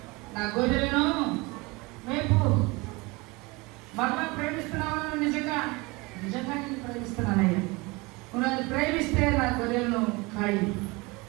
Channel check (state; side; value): quieter; left; 24.9 dB